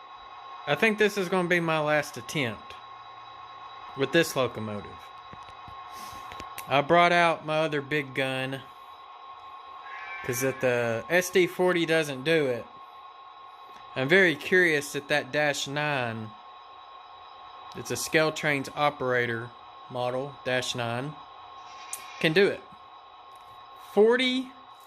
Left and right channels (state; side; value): identical; both; correlation 1.00